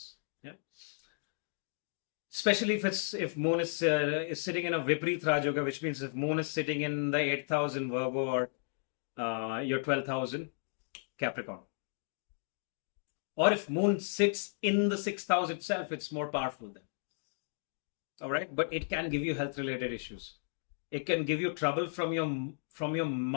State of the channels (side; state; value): right; silent; digital silence